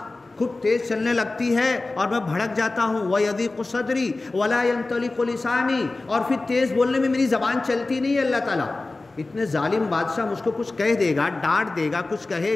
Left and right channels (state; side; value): quieter; right; 3.2 dB